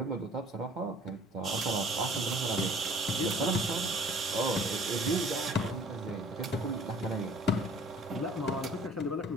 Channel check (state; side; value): normal; both; correlation 0.51